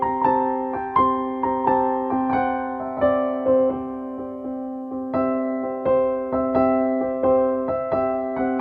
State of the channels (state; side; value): identical; both; correlation 1.00